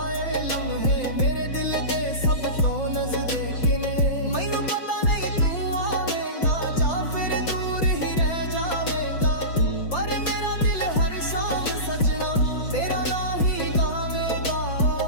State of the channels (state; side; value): late; right; 5.8 ms